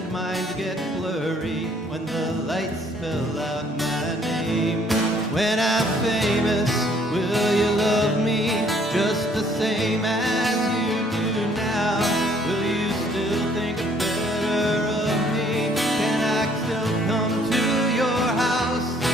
mind get blurry when the lights spell out my name? When I'm famous, will you love me just the same as you do now? Will you still think better of me? Can I still come to your house?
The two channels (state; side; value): normal; both; correlation 0.62